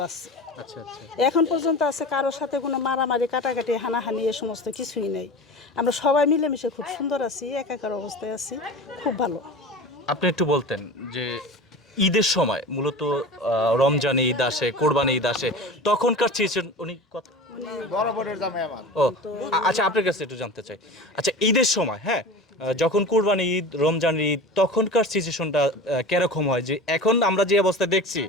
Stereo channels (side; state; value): both; normal; correlation 0.33